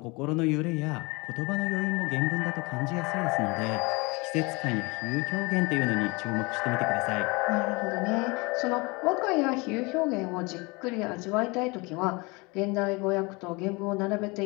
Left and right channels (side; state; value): right; quieter; 26.5 dB